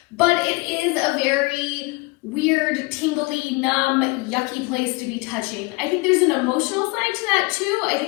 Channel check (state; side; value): quieter; right; 25.8 dB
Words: but it is a very weird, tingly, numb, yucky place to be touching. I think there's an emotional side to that too. I